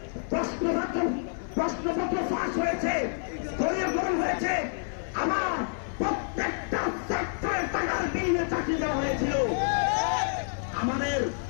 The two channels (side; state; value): right; silent; 55 dB below the other